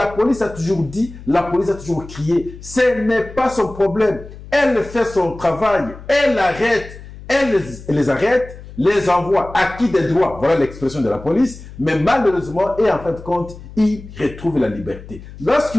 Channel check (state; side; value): noise; left; hum, 16 dB below the sound